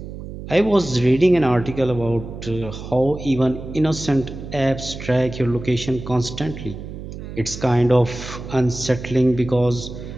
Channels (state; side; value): noise; right; hum, 11 dB below the sound